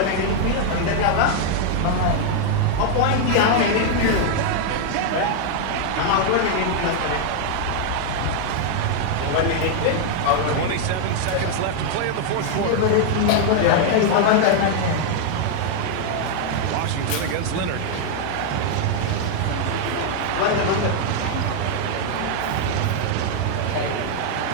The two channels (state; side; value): different; both; correlation 0.00